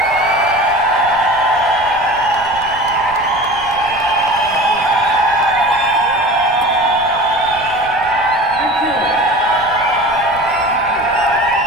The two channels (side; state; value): right; noise; rumble, 19 dB below the sound